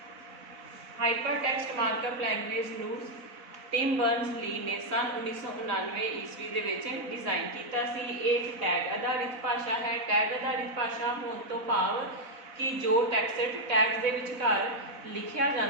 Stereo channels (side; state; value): left; late; 4.0 ms